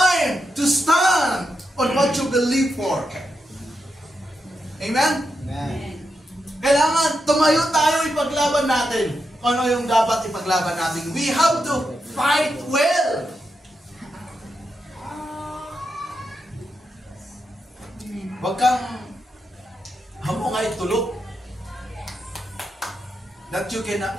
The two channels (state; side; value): normal; both; correlation 0.85